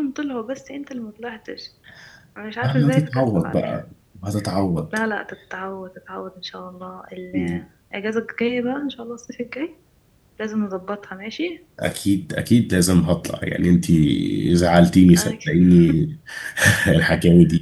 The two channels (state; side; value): identical; both; correlation 1.00